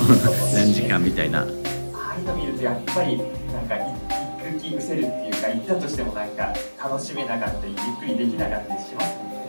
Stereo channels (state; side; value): inverted; both; correlation -1.00